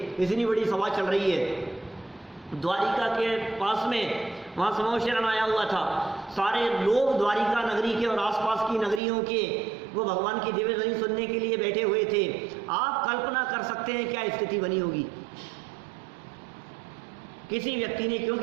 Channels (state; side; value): drops out; left; at 9.0 s